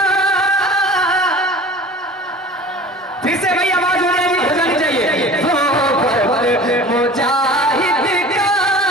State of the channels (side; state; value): both; normal; correlation 0.41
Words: फिर से भाई आवाज हो जानी चाहिए। वो मुजाहिद का